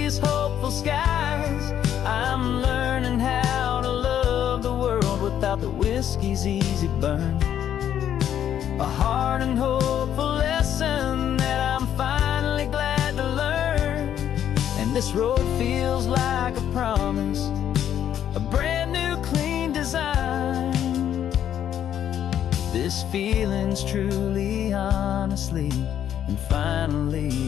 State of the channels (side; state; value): right; quieter; 10.0 dB